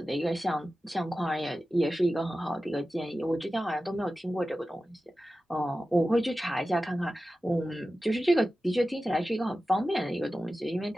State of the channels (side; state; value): both; normal; correlation 0.94